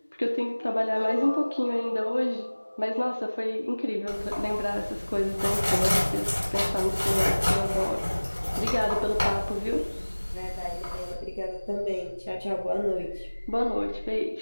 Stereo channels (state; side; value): inverted; both; correlation -1.00